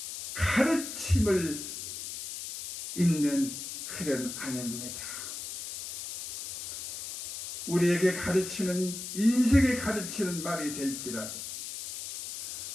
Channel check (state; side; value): noise; left; hiss, 8 dB below the sound